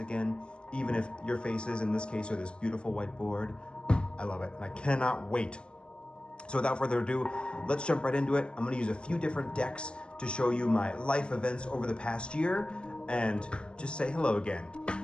even if your faces in this case are this beautiful whiteboard. I love it, and I cannot wait. So without further ado, let's jump right into it. I'm gonna use a few different decks to show you my life events over the past year, and just say hello again.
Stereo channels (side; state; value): right; late; 0.054 ms